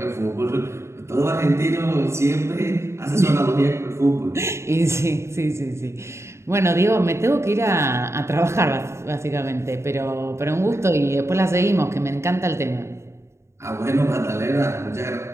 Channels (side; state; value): left; late; 0.13 ms